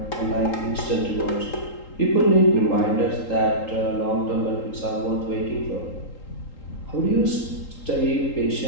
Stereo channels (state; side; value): late; right; 3.8 ms